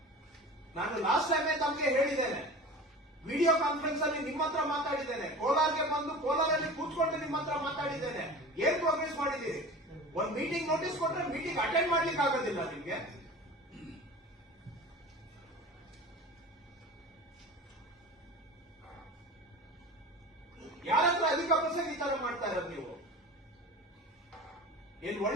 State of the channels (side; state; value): both; normal; correlation 0.36